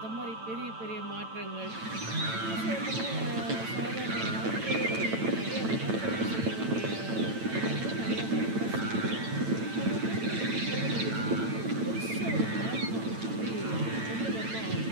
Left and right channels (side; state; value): left; late; 9.0 ms